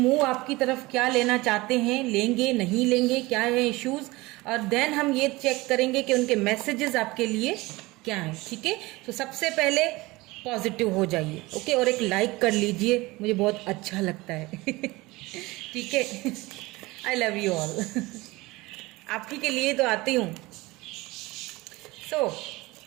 आपकी तरफ क्या लेना चाहते हैं, लेंगे नहीं लेंगे, क्या है इश्यूज, और देन हम ये चेक करेंगे कि उनके मैसेजेस आपके लिए क्या हैं, ठीक है। तो सबसे पहले पॉजिटिव हो जाइए, ओके, और एक लाइक कर लीजिए, मुझे बहुत अच्छा लगता है। ठीक है, आई लव यू ऑल। आप ही के लिए तो आती हूँ। सो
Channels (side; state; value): left; quieter; 21.4 dB